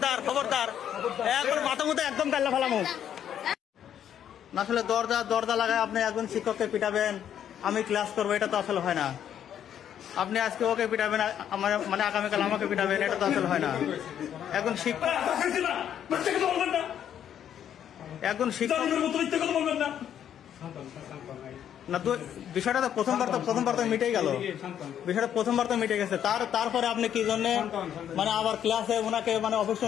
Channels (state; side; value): quieter; right; 9.7 dB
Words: খবরদার, একবার মাথা মতো একদম কাল্লা ফেলামো। আসলে দরজা লাগায় আপনি একজন শিক্ষককে পিটাবেন, আমি ক্লাস করবো, এটা তো আসলে হয় না। আপনি আজকে ওকে পিটাবেন, আমার মানে আগামীকাল আমাকে পিটাবেন, এটা তো আসলে হয় না। একজন শিক্ষক না তো, বিষয়টা তো প্রথমবার তো মিটেই গেল, বিষয়টা প্রথমবার তো মিটে গেছে। তারপরে আপনি কি জন্য মানে আবার ক্লাসে ওনাকে মানে অফিস